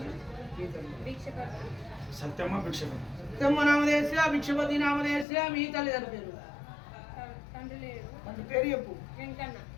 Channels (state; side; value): drops out; right; at 5.2 s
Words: సత్యమ్మ నామదేశ్య, భిక్షపతి నామదేశ్య. మీ తల్లిదండ్రి పేరు తండ్రి పేరు చెప్పు.